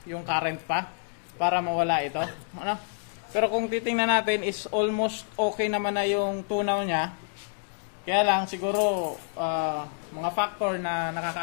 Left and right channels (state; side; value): silent; right; digital silence